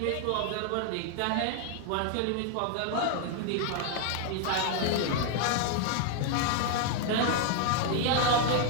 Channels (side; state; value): both; different; correlation 0.00